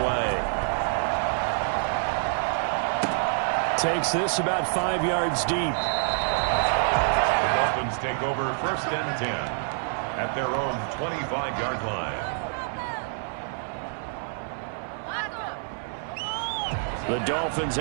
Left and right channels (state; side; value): silent; left; 60 dB below the other